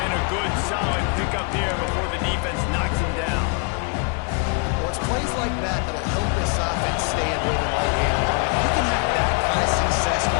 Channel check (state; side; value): quieter; right; 33.9 dB